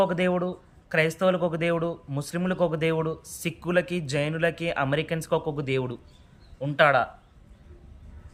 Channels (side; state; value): both; identical; correlation 1.00